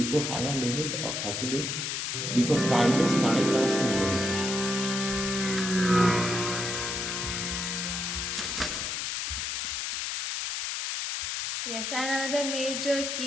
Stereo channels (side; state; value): left; noise; hiss, 2 dB below the sound